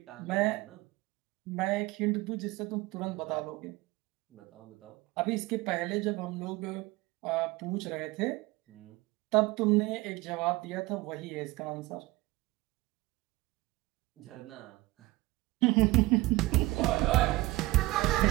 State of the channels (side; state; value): left; quieter; 20.4 dB